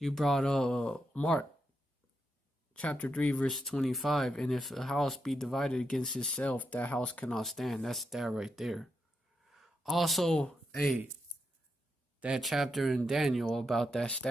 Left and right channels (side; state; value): both; normal; correlation 0.84